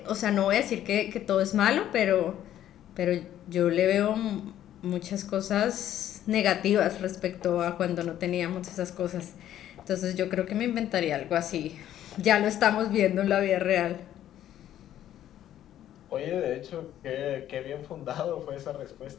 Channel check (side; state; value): right; quieter; 11.8 dB